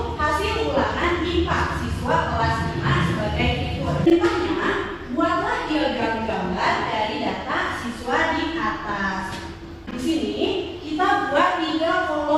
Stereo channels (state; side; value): identical; both; correlation 1.00